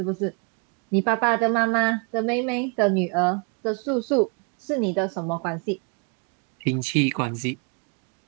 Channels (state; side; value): quieter; left; 36.8 dB